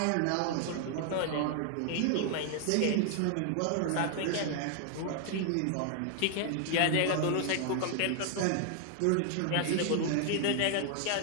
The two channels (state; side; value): different; both; correlation 0.00